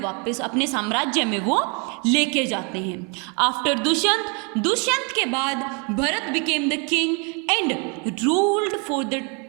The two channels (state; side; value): quieter; left; 34.4 dB